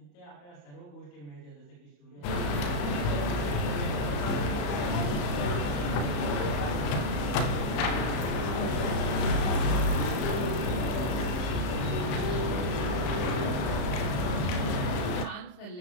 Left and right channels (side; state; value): right; late; 34 ms